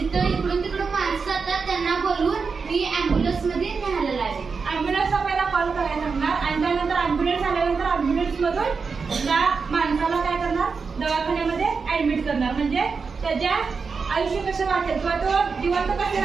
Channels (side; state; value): left; quieter; 5.1 dB